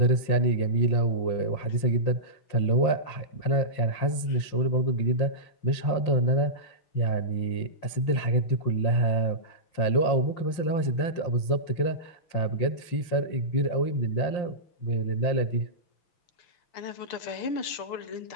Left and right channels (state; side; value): late; right; 5.7 ms